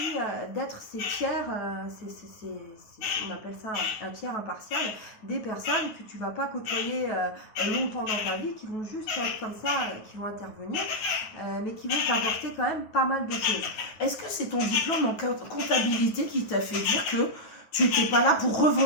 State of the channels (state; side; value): late; right; 9.2 ms